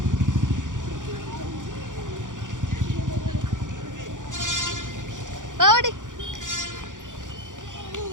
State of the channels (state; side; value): late; left; 0.87 ms